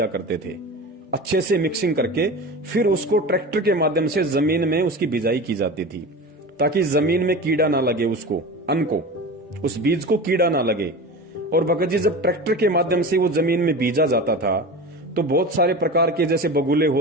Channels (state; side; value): normal; both; correlation 0.30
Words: करते थे अच्छे से मिक्सिंग करके, फिर उसको ट्रैक्टर के माध्यम से जमीन में उसकी बिजाई की जाती थी, ताकि जमीन में कीड़ा ना लगे, उसको अन्न को, उस बीज को कीड़ा ना लगे। और भगत जी जब ट्रैक्टर के माध्यम से वो जमीन में बीजा जाता था, तो बहुत सारे प्रकार के जैसे बगुले